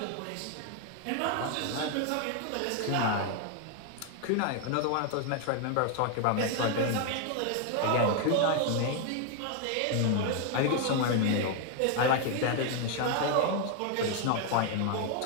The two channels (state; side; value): different; both; correlation 0.01